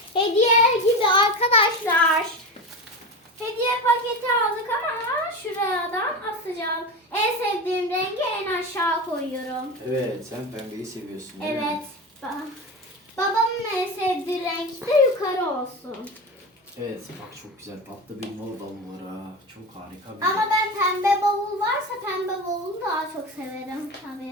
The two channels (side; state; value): both; normal; correlation 0.24